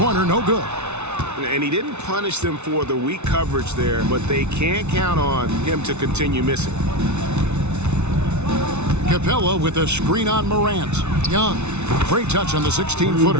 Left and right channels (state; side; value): late; left; 0.82 ms